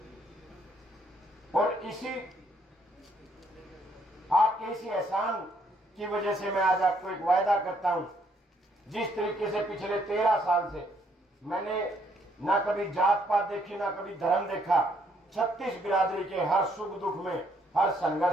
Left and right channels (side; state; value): both; normal; correlation 0.69